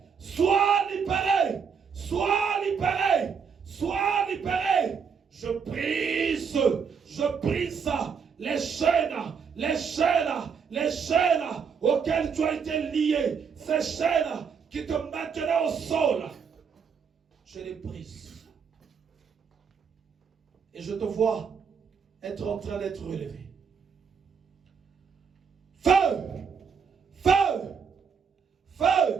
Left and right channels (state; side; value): quieter; left; 6.4 dB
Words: sois libéré, sois libéré, sois libéré. Je brise les chaînes, les chaînes, les chaînes auxquelles tu as été lié, ces chaînes qui te maintenaient au sol. Je les brise. Et je te vois être en train d'être relevé. Feu! Feu!